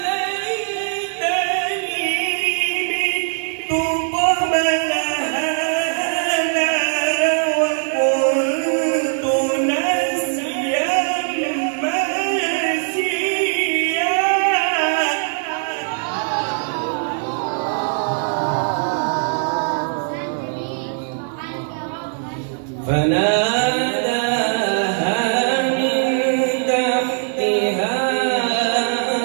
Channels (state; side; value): silent; left; 65 dB below the other